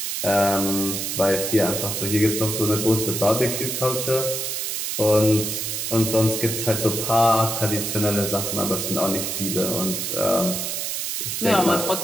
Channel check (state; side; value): noise; right; hiss, 3 dB below the sound